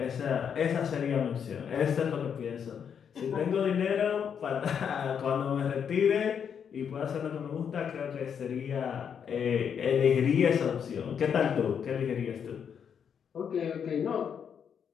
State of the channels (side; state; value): right; quieter; 7.6 dB